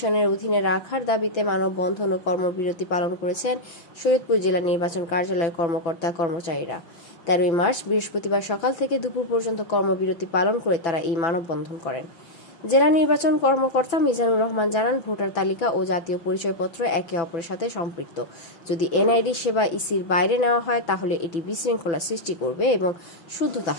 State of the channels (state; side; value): late; right; 6.0 ms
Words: অধীনে রাখার দাবিতে মানববন্ধন ও কর্মবিরতি পালন করেছেন শরীয়তপুর জেলা নির্বাচন কার্যালয়ের কর্মকর্তা কর্মচারীরা। 13 মার্চ বৃহস্পতিবার সকাল থেকে দুপুর পর্যন্ত কর্মবিরতি পালন করে তারা এই মানববন্ধন করেন। জেলা নির্বাচন কর্মকর্তা মিজানুর রহমান জানান, ভোটার তালিকা ও জাতীয় পরিচয়পত্র একে অপরের সাথে সম্পৃক্ত। যদি এনআইডি সেবা ইসির বাইরে নেওয়া হয় তাহলে এটি বিশৃঙ্খলা সৃষ্টি করবে এবং শুদ্ধতা